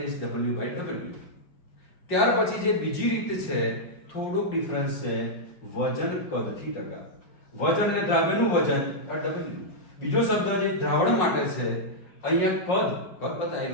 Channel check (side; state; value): right; late; 5.5 ms